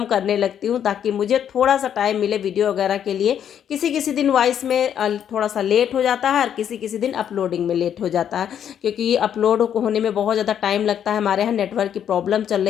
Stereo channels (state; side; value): quieter; right; 9.2 dB